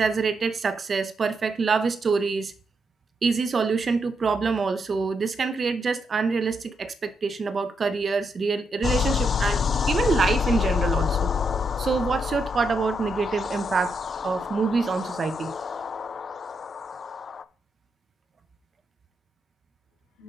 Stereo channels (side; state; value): both; normal; correlation 0.81